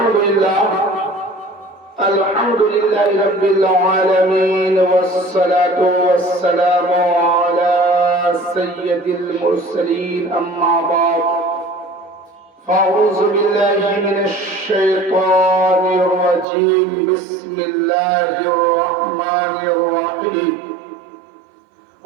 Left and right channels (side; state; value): left; drops out; at 16.4 s